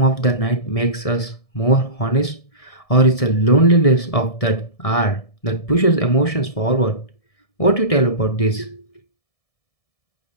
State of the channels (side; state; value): right; late; 1.7 ms